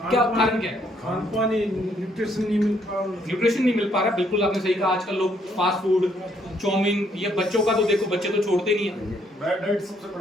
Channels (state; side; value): normal; both; correlation 0.70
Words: क्या कारण क्या है? खान पान, न्यूट्रिशन नहीं मिल पा रहा। न्यूट्रिशन नहीं मिल पा रहा, बिल्कुल आपने सही कहा। आजकल लोग फास्ट फूड, चाउमीन, ये बच्चों का तो देखो, बच्चे तो छोड़ते नहीं है, बैड डाइट सबसे